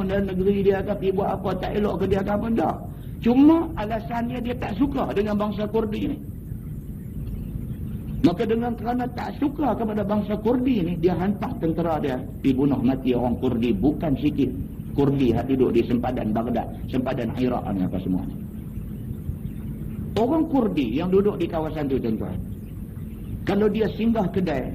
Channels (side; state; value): both; identical; correlation 1.00